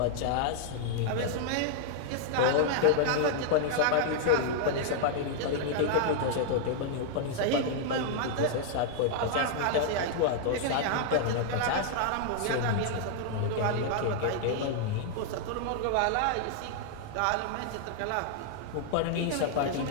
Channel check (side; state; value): both; different; correlation -0.01